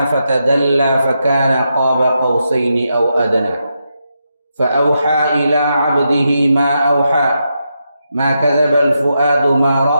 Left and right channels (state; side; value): inverted; both; correlation -0.84